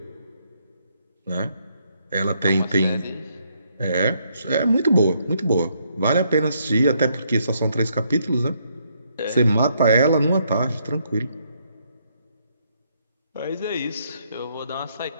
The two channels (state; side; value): inverted; both; correlation -0.73